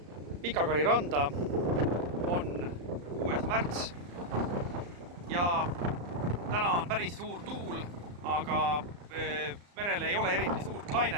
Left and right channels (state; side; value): late; left; 34 ms